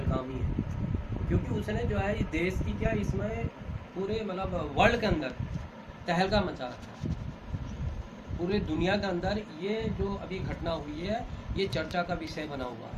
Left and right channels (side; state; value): both; identical; correlation 1.00